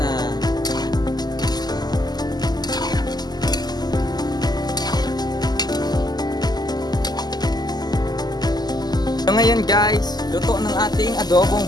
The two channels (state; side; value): late; right; 0.20 ms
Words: So ngayon guys, luto ng ating adobong